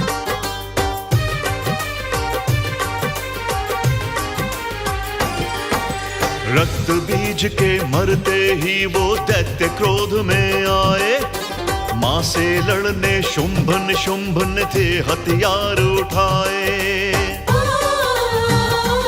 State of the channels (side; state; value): both; identical; correlation 1.00